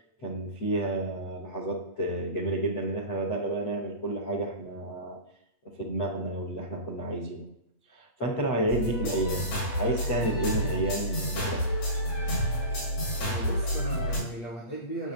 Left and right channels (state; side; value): late; right; 8.6 ms